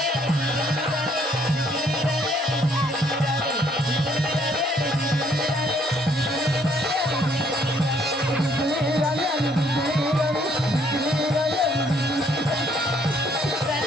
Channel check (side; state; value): both; normal; correlation 0.66